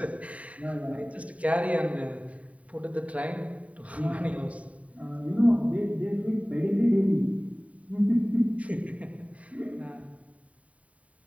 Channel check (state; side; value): late; left; 0.067 ms